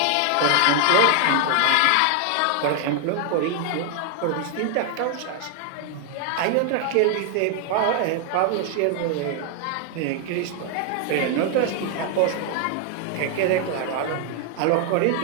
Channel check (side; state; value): both; different; correlation 0.00